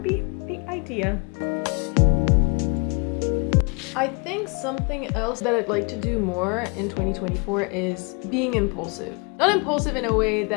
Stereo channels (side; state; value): right; quieter; 33.9 dB